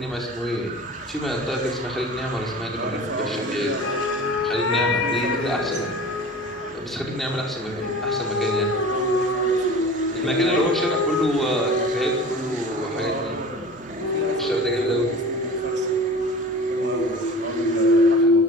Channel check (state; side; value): normal; both; correlation 0.39